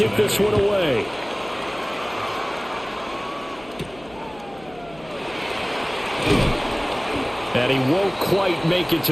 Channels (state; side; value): noise; left; hum, 23 dB below the sound